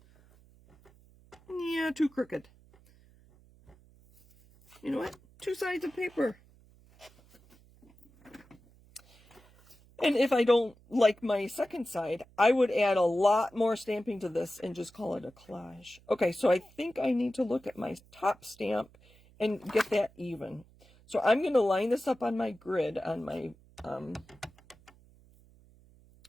Yeah, too crooked. You know what? 2 sides of paper. And if I don't like my second side, I would add a lot more stamping to this and just call it a collage. Okay, so I think I need to look at my top stamp and get that even. So I'm going to line this up on my grid on my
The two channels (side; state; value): right; noise; hum, 27 dB below the sound